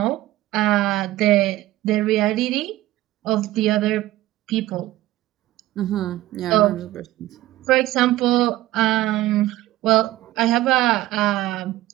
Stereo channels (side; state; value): left; quieter; 16.0 dB